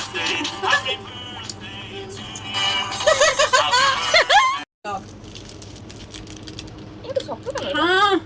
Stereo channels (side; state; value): both; identical; correlation 1.00